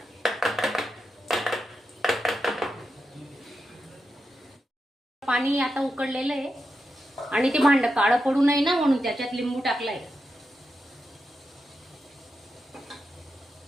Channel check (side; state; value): both; normal; correlation 0.87